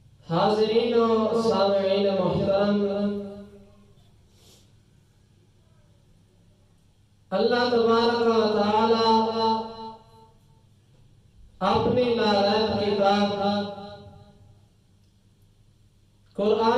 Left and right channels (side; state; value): both; identical; correlation 1.00